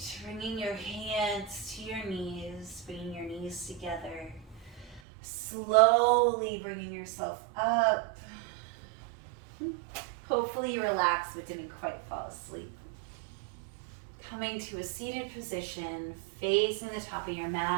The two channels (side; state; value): left; drops out; at 5.0 s